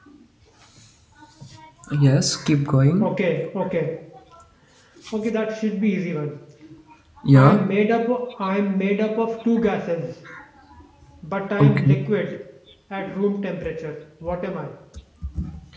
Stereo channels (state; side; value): identical; both; correlation 1.00